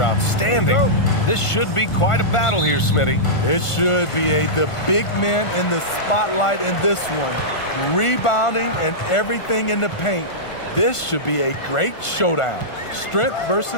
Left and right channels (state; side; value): late; right; 1.5 ms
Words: outstanding. This should be quite a battle here, Smitty. It should be the big men in the spotlight in this one. Rebounding and everything in the paint. This should be a great showdown. Strength